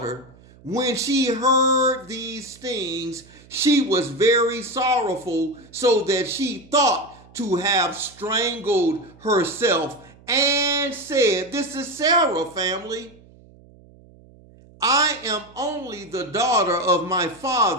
When she heard these things, she was very sorrowful, so that she thought to have strangled herself, and said, this is Sarah, family. I am only the daughter of my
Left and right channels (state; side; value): noise; right; hum, 25 dB below the sound